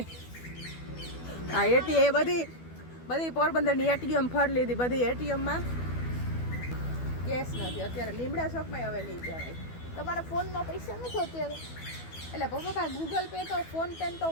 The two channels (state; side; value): late; right; 12 ms